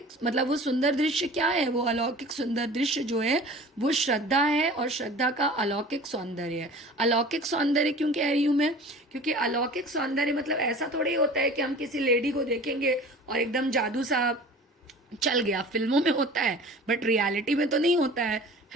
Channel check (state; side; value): normal; both; correlation 0.42